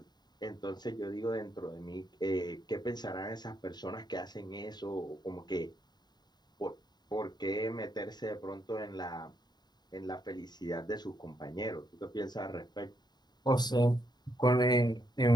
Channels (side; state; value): right; late; 0.20 ms